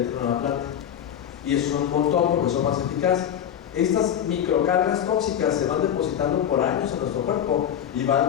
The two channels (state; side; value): quieter; right; 9.5 dB